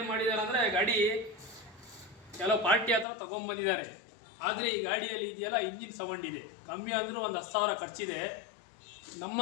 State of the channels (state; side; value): drops out; right; at 3.1 s